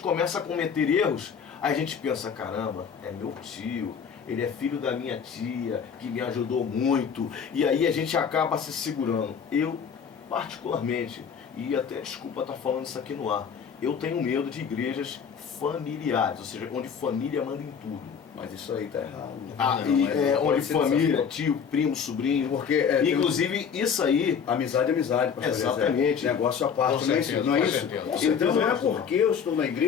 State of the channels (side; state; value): right; quieter; 6.9 dB